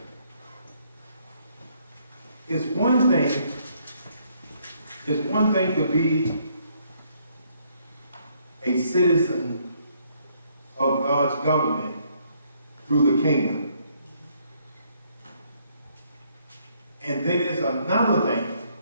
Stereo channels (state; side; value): inverted; both; correlation -0.69